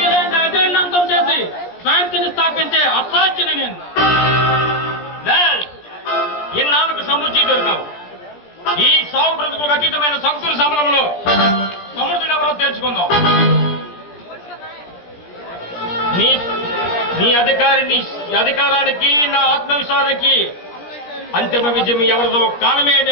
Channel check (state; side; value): late; right; 17 ms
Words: అజేయుడిని అంతం చేసి శాంతిని స్థాపించే అసాధ్యుని నేను. ఇన్నాళ్ళకు సముచి దొరికావు. ఈ సాగు బ్రతుకులకు అతీతమైన సంకుల సమరంలో సమర్థుడు ఎవరో తెలుసుకుందాం. నీ అధికారానికి నా ఆత్మవిశ్వాసానికి అంతిమ విజయం ఎవరిదో కాలమే